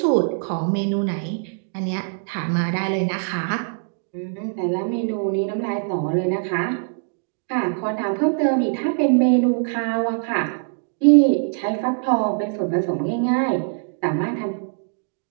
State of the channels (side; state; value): left; silent; 64 dB below the other